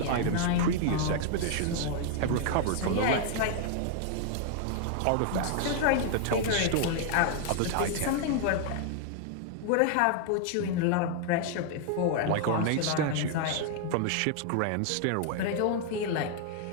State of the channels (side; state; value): both; different; correlation 0.00